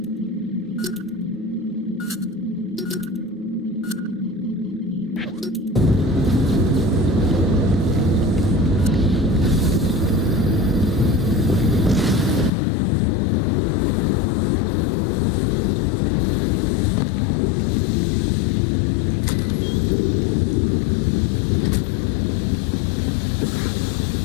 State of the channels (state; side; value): drops out; right; at 12.5 s